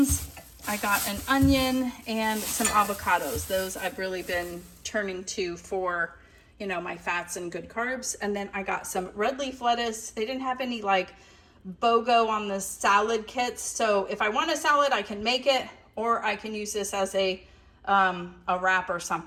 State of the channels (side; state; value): both; identical; correlation 1.00